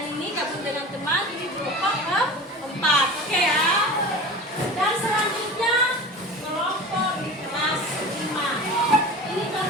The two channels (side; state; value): both; normal; correlation 0.34